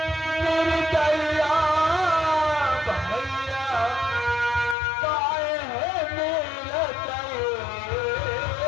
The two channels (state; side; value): drops out; right; at 4.8 s